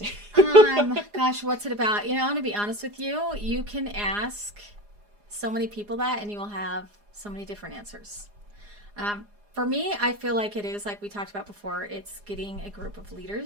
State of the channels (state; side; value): late; left; 4.9 ms